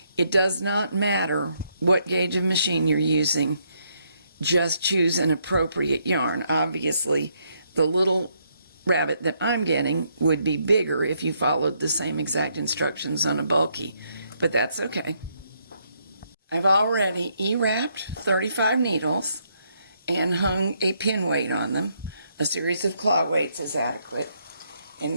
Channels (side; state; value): both; inverted; correlation -0.74